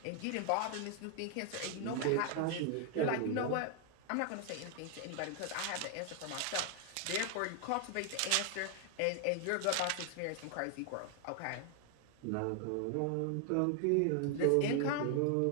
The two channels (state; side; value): different; both; correlation 0.00